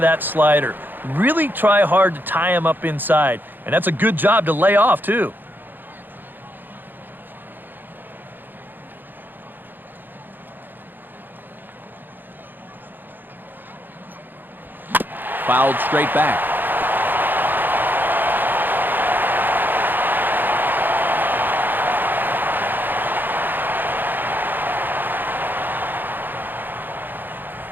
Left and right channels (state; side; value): late; left; 0.091 ms